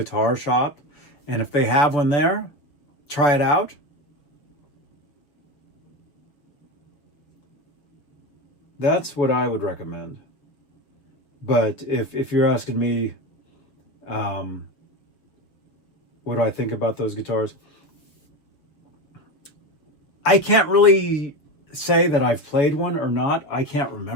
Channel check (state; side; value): late; right; 6.6 ms